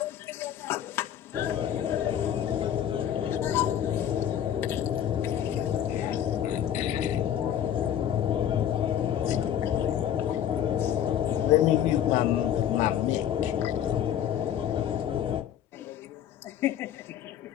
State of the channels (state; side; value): quieter; right; 10.1 dB